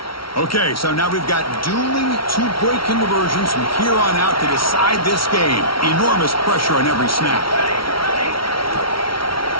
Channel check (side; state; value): right; late; 0.74 ms